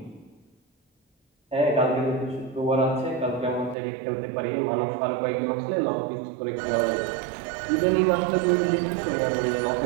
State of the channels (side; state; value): left; drops out; at 3.8 s